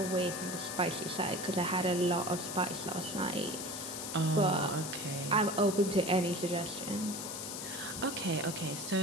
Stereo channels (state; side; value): noise; left; hiss, 6 dB below the sound